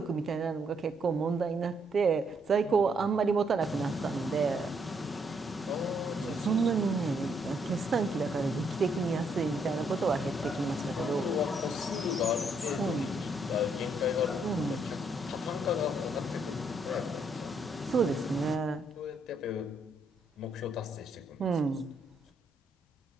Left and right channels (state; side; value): normal; both; correlation 0.73